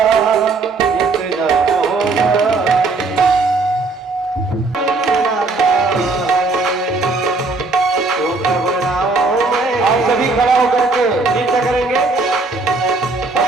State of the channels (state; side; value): quieter; left; 3.7 dB